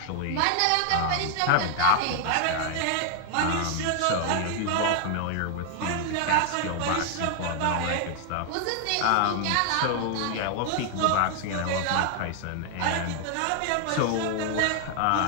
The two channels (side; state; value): both; different; correlation 0.00